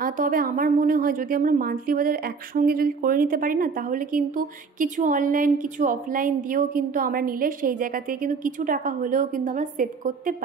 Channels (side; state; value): left; quieter; 5.1 dB